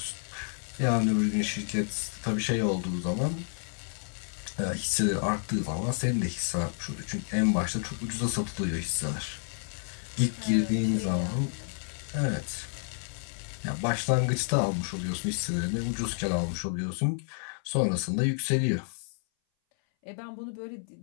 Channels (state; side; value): silent; right; 58 dB below the other